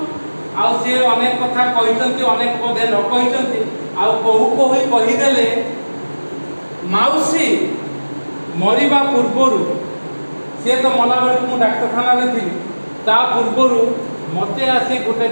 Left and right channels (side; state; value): both; inverted; correlation -1.00